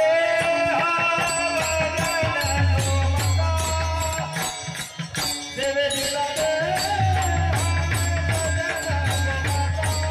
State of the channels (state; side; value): identical; both; correlation 1.00